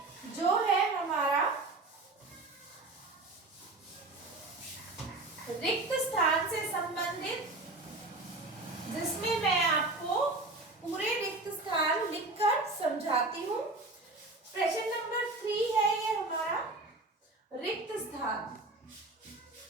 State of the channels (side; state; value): left; quieter; 3.1 dB